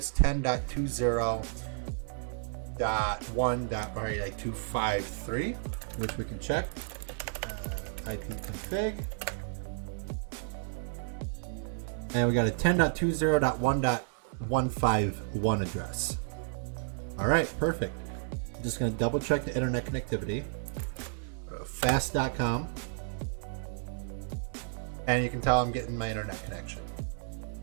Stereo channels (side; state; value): left; silent; 56 dB below the other